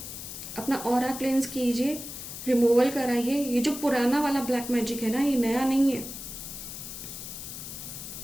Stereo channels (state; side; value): noise; left; hiss, 9 dB below the sound